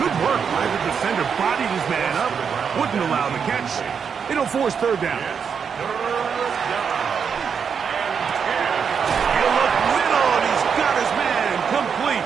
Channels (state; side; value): quieter; left; 6.7 dB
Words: work by the defender. Bodied his man up. Wouldn't allow the catch. It'll force 3rd down. He'll look middle, and he's got his man complete.